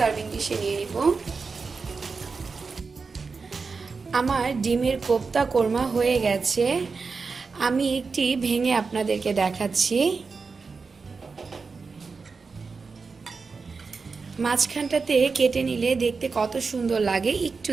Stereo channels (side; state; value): left; quieter; 4.7 dB